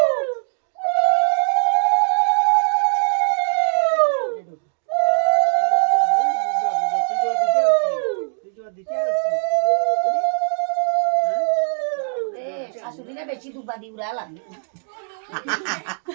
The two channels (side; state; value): left; silent; digital silence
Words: শাশুড়িরা বেশি দুবা দি উড়ালা